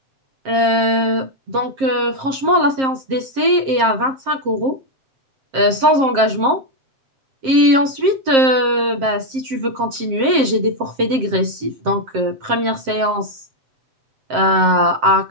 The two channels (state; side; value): late; left; 7.6 ms